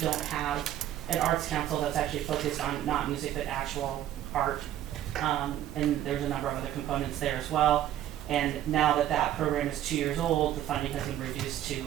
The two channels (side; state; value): left; quieter; 12.1 dB